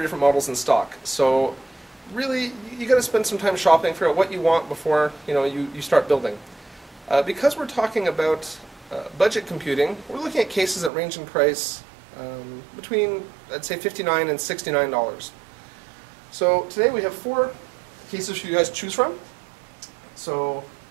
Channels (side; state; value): left; drops out; at 10.9 s